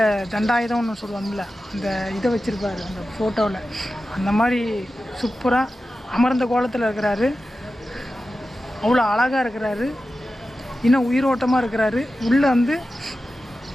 தண்டாயுதம்னு சொல்லுவாங்கள்ல, அந்த இதை வச்சுருப்பார் அந்த ஃபோட்டோவில். அந்த மாதிரி சூப்பராக அமர்ந்த கோலத்தில் இருக்கிறாரு. அவ்வளோ அழகாக இருக்கிறாரு, இன்னும் உயிரோட்டமாக இருக்கிறாரு. உள்ளே வந்து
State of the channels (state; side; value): normal; both; correlation 0.93